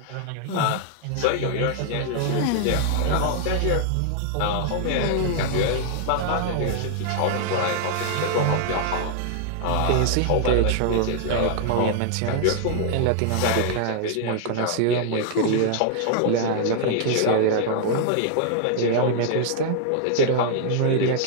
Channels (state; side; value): different; both; correlation -0.01